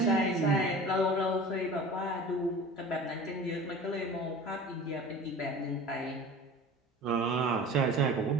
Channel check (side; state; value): both; normal; correlation 0.39